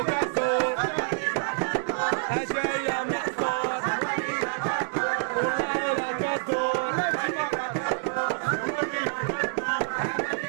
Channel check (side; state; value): left; silent; digital silence